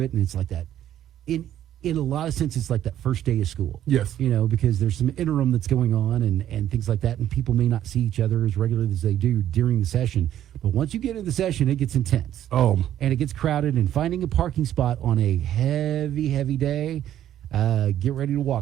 it, and it's like that. In a lot of sense, it's like that first day of school. Yes. Because there's some interim that's going on and things like that, and people may not see each other as regularly as they do during the session. But once you get into the session, it gets intense. Oh. And it gets crowded, and finding a parking spot on a heavy, heavy day, get ready to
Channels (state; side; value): quieter; left; 11.5 dB